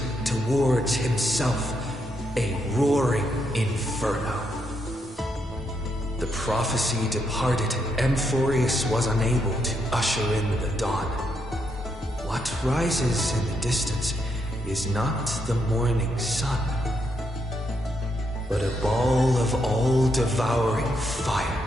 towards himself, a roaring inferno. The prophecy departed, Amphorius was unable to usher in the dawn. What rises in the distance is not the morning sun, but a ball of all-devouring fire,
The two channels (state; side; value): normal; both; correlation 0.78